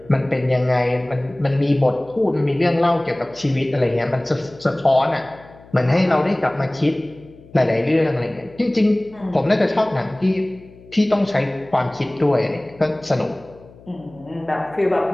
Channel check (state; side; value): noise; left; hum, 23 dB below the sound